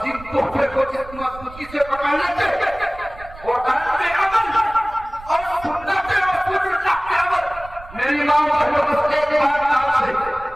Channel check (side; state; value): right; noise; rumble, 18 dB below the sound